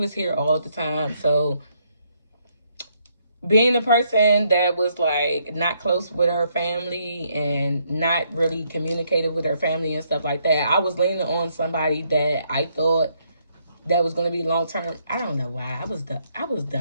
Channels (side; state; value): both; inverted; correlation -0.73